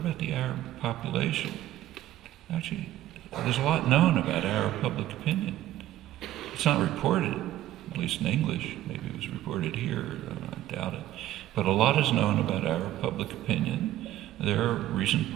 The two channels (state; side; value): quieter; left; 13.9 dB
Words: the Arab population? Actually, there's a lot known about Arab public opinion. It's not reported, at least in English. Maybe it was reported here, I doubt it. But a lot is known about Arab public opinion. There are recent